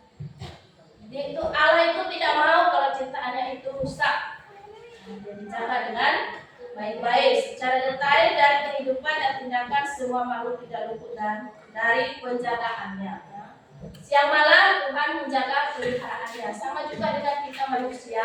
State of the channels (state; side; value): identical; both; correlation 1.00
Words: Itu Allah itu tidak mau kalau ciptaannya itu rusak. Dia dijaga dengan baik-baik, secara detail dan kehidupan dan tindakan semua makhluk tidak luput dan dari penjagaannya. Ya. Siang malam Tuhan menjaga peliharaannya. Sama juga dengan kita